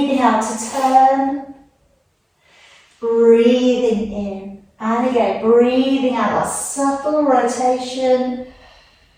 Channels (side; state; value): both; identical; correlation 1.00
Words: out to turn. Breathing in. And again, breathing out, that subtle rotation.